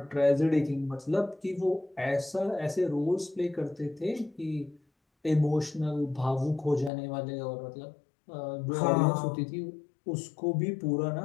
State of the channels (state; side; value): drops out; right; at 6.9 s